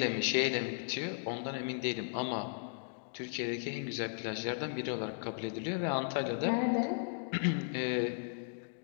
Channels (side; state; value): right; silent; digital silence